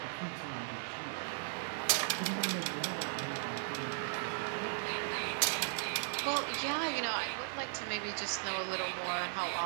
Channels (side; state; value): left; silent; 53 dB below the other